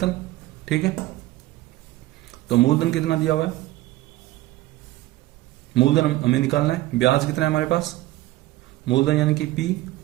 ठीक है, तो मूलधन कितना दिया हुआ है, मूलधन हमें निकालना है, ब्याज कितना है हमारे पास, मूलधन यानी कि P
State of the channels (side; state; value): left; quieter; 16.9 dB